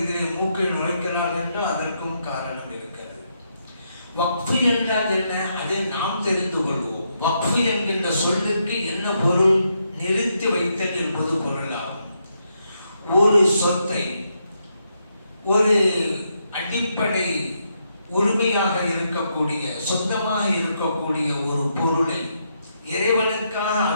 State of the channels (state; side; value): inverted; both; correlation -0.79